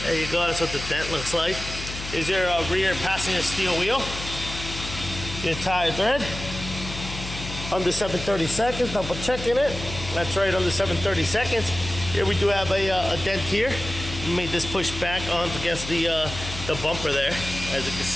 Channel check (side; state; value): left; noise; hum, 9 dB below the sound